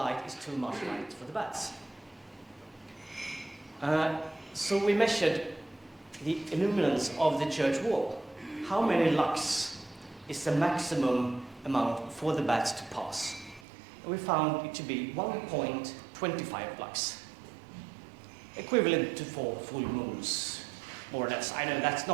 is too much light for the bats? So we measured the illuminance of the church wall. How many lux is the maximum amount for the bats to pass? And we found it to be 1.25 lux, equivalent to 4 full moons, more or less. I know that's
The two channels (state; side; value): drops out; left; at 13.7 s